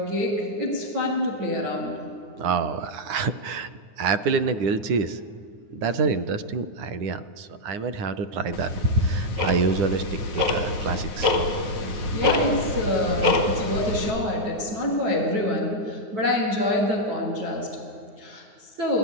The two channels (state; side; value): late; left; 9.6 ms